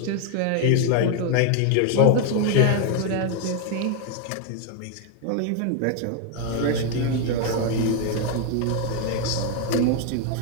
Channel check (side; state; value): both; different; correlation 0.01